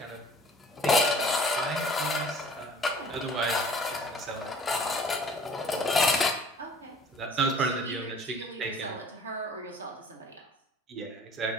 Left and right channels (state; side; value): normal; both; correlation 0.51